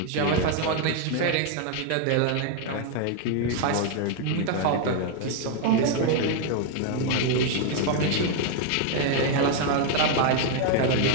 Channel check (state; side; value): different; both; correlation 0.01